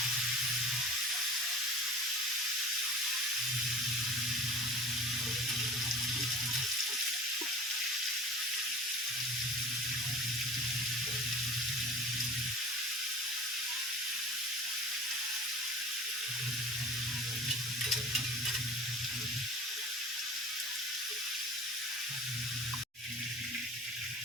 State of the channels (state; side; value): normal; both; correlation 0.39